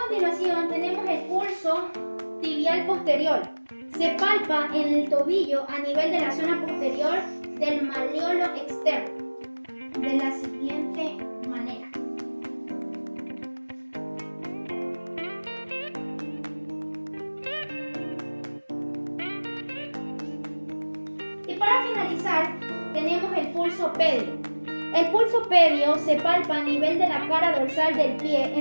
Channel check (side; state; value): both; inverted; correlation -1.00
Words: tenemos el pulso tibial posterior. Se palpa en el tobillo a nivel de la zona posterior del malleolo externo, de la siguiente manera. Y para finalizar, tenemos el pulso pedio. El pulso pedio se palpa a nivel de la cara dorsal del pie